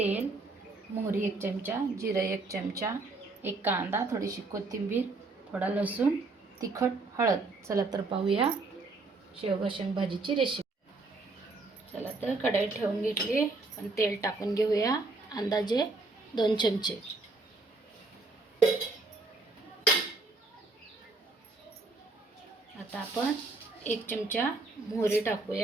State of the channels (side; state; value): left; quieter; 3.5 dB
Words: मोहरी 1 चमचा, जिरे 1 चमचा, एक कांदा, थोडीशी कोथिंबीर, थोडा लसूण, तिखट, हळद। चला तर पाहूया शेवगा शेंग भाजीची रेसिपी। चला तर कढई ठेवून घेतली आणि तेल टाकून घेऊया अंदाजे 2 चमचे। आता आपण 1 चमचा मोहरी